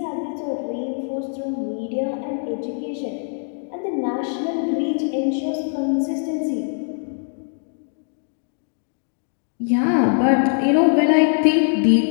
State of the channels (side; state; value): right; silent; digital silence